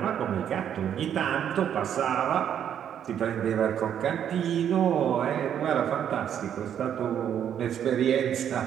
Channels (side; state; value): left; quieter; 9.3 dB